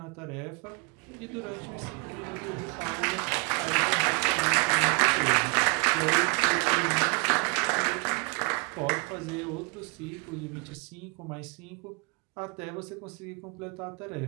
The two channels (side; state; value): left; quieter; 32.1 dB